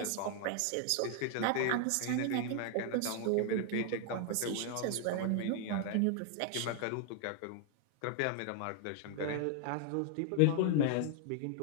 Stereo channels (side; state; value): both; different; correlation 0.00